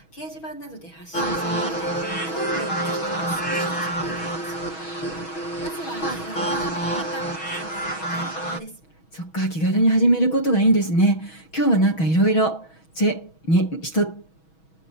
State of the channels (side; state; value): right; late; 6.2 ms